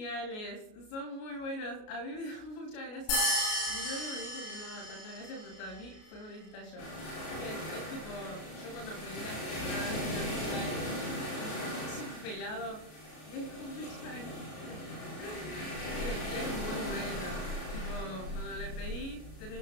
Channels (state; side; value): late; right; 33 ms